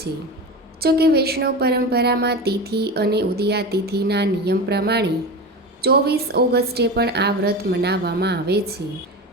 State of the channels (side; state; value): both; normal; correlation 0.26